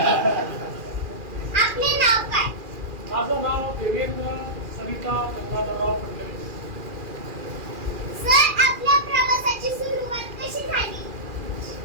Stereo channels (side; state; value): left; late; 2.4 ms